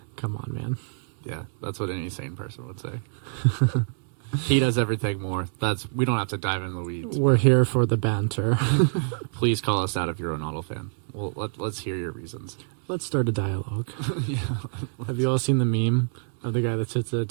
Come on, man. Yeah, that's what any sane person would say. He does everything more. We don't have to dive into the weeds. We're here for the banter. Please call us out if you're a Ronaldo fan. Well, let's hear your reasons. Let's start a dialogue. Yeah. Have you all seen the meme of the guy that sits at a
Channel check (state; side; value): quieter; left; 36.3 dB